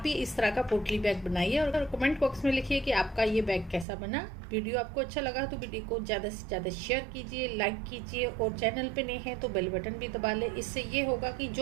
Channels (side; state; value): left; drops out; at 3.9 s